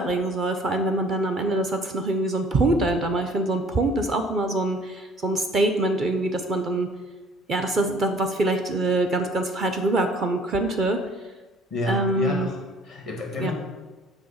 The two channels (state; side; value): normal; both; correlation 0.54